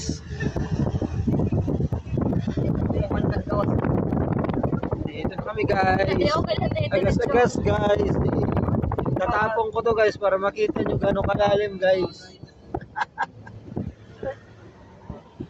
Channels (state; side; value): identical; both; correlation 1.00